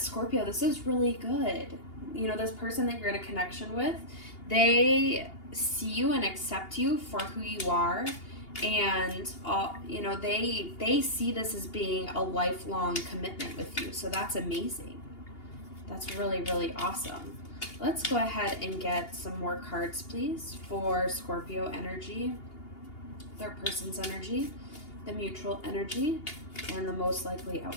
Scorpio, this is really good. This person that you're in a connection with, they see you and accept you for who you are, and they see this as being a lifelong commitment with you. So that's amazing. That's really, really awesome. Let's go ahead and get some more cards, please, for Scorpio energy, their person's energy, the mutual energy, and the most likely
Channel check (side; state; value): right; late; 2.8 ms